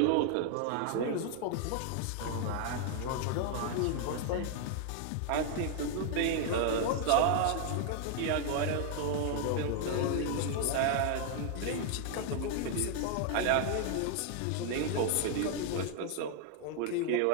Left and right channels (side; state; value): both; different; correlation 0.00